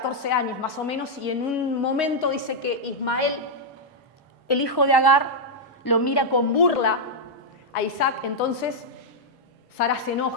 años más o menos, y en un momento dice que Ismael, el hijo de Agar, lo mira con burla a Isaac. Entonces Sara se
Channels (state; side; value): normal; both; correlation -0.04